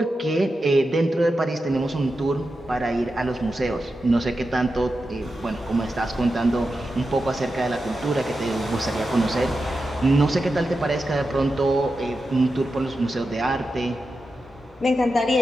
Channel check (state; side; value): normal; both; correlation 0.90